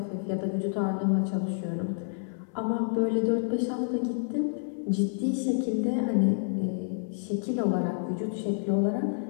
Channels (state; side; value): silent; right; 59 dB below the other